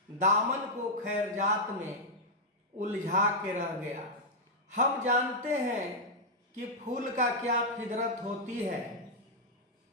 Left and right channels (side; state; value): both; normal; correlation -0.04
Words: दामन को खैरजात में उलझा के रह गया। हम जानते हैं कि फूल का क्या फितरत होती है।